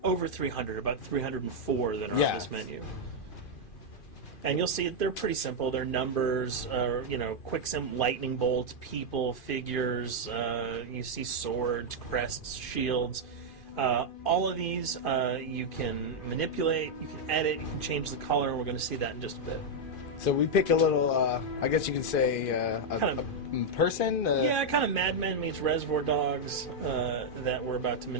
over 300, about 304 that are on this menu. And you'll see they're pretty simple. They're numbers, quick lightning bolts, people, figures. You see swords, crests, shields. All of these you can manipulate, you can edit, you can change the color, and we're going to see that in just a bit. So we pick a little, I guess you can say, a person? Yeah, kind of Mad Men meets Reservoir Dogs that we're about to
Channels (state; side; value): late; right; 2.5 ms